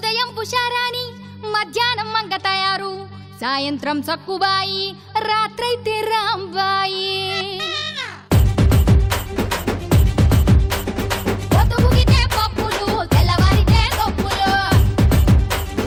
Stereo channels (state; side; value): identical; both; correlation 1.00